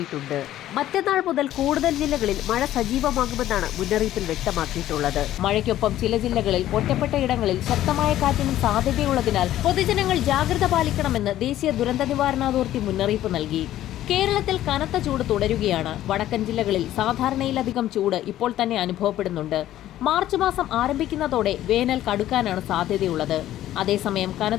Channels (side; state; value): right; quieter; 13.2 dB